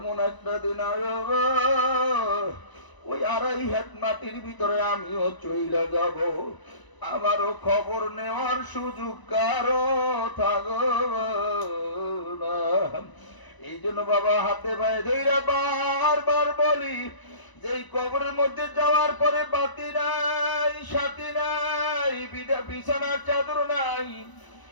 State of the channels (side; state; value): right; late; 1.0 ms